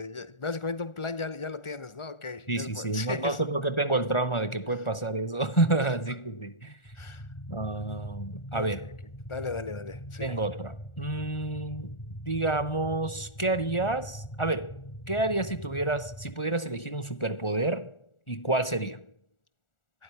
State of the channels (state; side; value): late; right; 1.4 ms